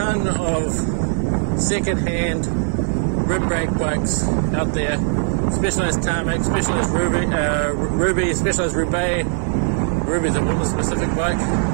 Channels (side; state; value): left; silent; digital silence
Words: of second-hand rim brake bikes out there. Specialized Tarmac, Specialized Ruby, Specialized Roubaix. Ruby's a woman-specific bike.